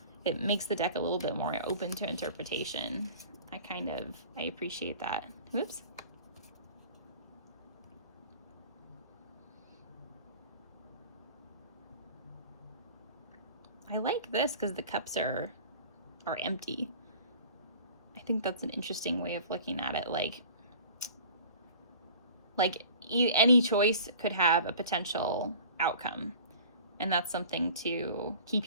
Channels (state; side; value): inverted; both; correlation -0.44